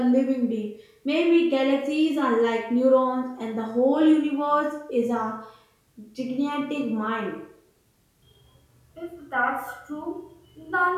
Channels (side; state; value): both; identical; correlation 1.00